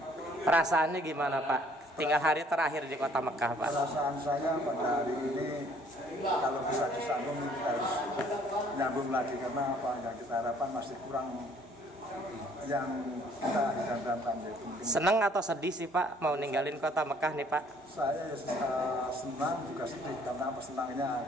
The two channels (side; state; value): both; normal; correlation 0.60